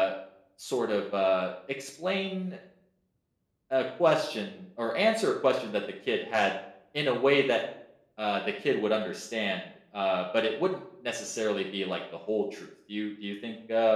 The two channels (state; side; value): identical; both; correlation 1.00